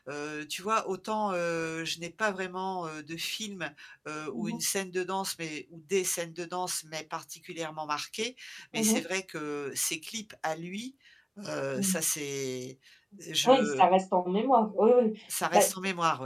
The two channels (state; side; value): identical; both; correlation 1.00